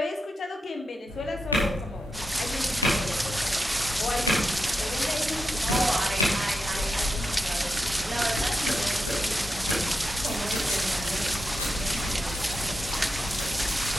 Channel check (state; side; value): normal; both; correlation 0.87